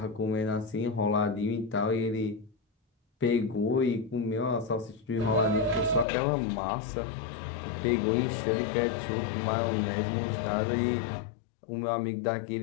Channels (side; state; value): right; drops out; at 6.1 s